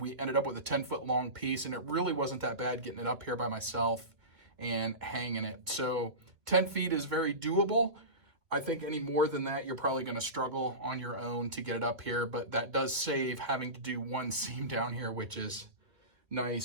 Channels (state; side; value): late; left; 2.4 ms